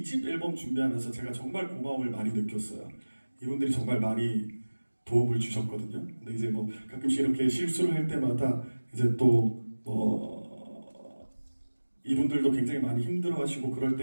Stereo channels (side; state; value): both; inverted; correlation -1.00